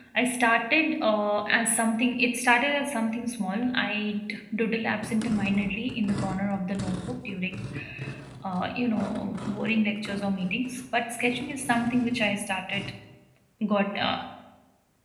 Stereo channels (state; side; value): identical; both; correlation 1.00